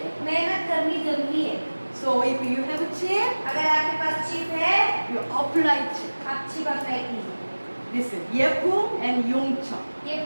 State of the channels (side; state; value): both; inverted; correlation -1.00